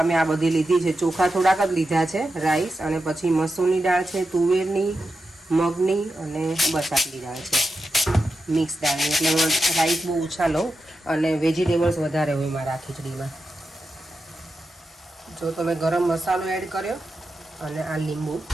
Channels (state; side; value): normal; both; correlation 0.89